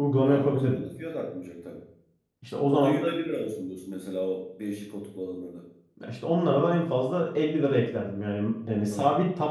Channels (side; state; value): both; identical; correlation 1.00